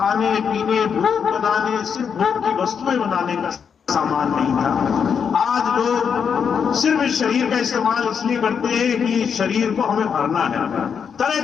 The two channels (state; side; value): quieter; right; 6.9 dB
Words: पीने, भोग बनाने, सिर्फ भोग की वस्तुएं बनाने का सामान नहीं था। आज लोग सिर्फ इस शरीर का इस्तेमाल इसलिए करते हैं कि शरीर को हमें भरना है, तरह